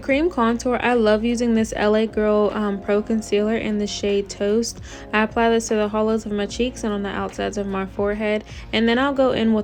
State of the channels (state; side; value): identical; both; correlation 1.00